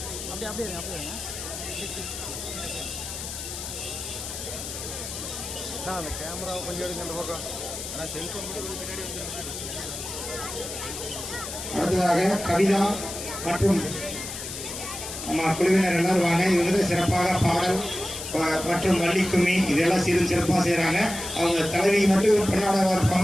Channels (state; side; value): noise; left; hiss, 8 dB below the sound